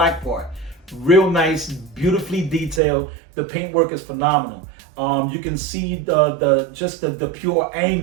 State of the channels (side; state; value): left; drops out; at 2.8 s